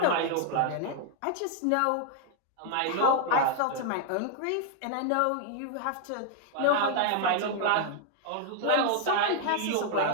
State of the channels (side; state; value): both; different; correlation -0.01